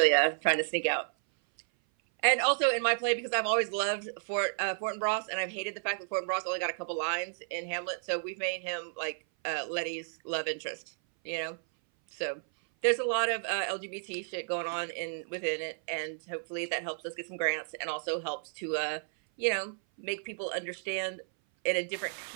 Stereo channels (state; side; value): silent; left; 56 dB below the other